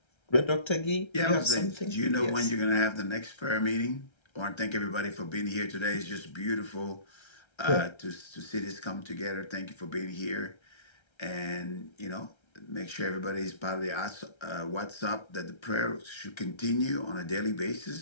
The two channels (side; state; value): right; late; 1.3 ms